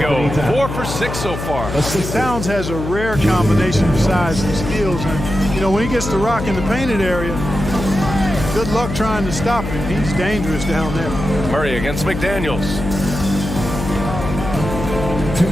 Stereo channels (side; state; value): left; noise; hum, 6 dB below the sound